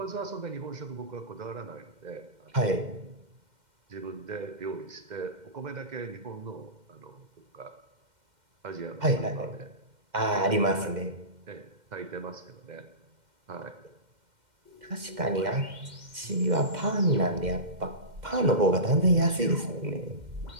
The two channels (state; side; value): late; left; 2.1 ms